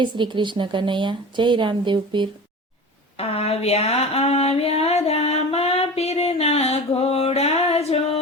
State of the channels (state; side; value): normal; both; correlation 0.34